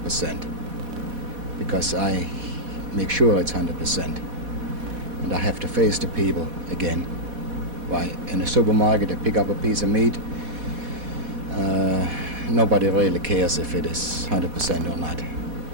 because I make sure it's 100%. And I have to face the people again. Why, in a supermarket, they pick up a piece of meat. Nobody really cares if it is 100% or not.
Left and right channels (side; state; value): left; late; 4.1 ms